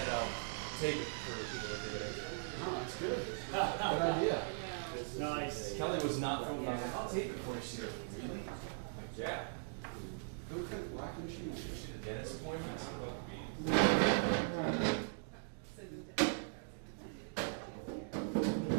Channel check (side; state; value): left; silent; digital silence